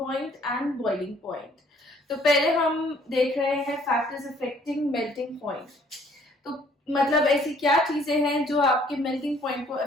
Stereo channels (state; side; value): normal; both; correlation 0.61